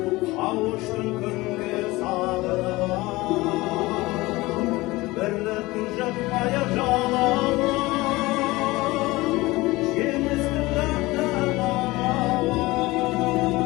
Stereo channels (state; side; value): quieter; right; 20.5 dB